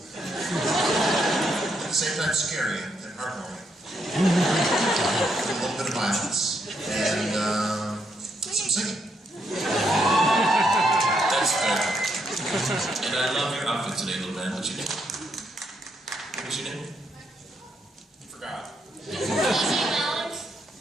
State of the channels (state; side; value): normal; both; correlation 0.77